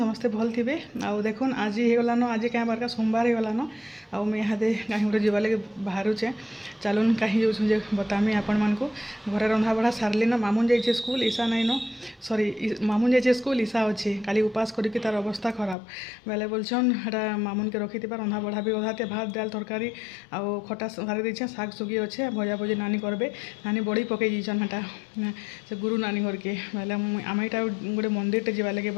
भल थे आउ देखुन आज होगलान आज क्या बारका सोमवार होगलान आउ मुझे यहाँ कहीं गोटे जावा लगे बाहरुचे चलुन कहीं जो बतामी आपण मानक घर रंधा बढ़ा सारे न मामुन जाइए school Isha nine sorry Mamun जाइए स्कूल ईशा अच्छे खाली उपास करके तार अवस्था खराब बेले बोलछन हटा मामुन के रखी रंधा बढ़ा भी अधाते भात दाल तरकारी आउ खटा सारी देछे शाग सुगी अच्छे भजा भजी नानी करबे नानी बड़ी पकई दीछन हटा से गुरु नानी घर के बेले आम यहाँ गोटे मंदिर टे जावा लगे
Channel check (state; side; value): drops out; right; at 15.8 s